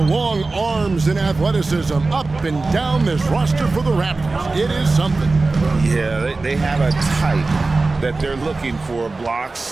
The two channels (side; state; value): left; quieter; 3.6 dB